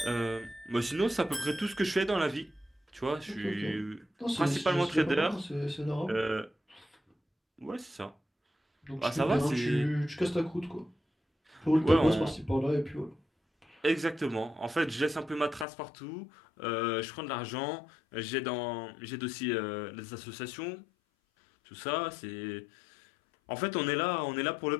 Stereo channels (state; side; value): drops out; right; at 15.7 s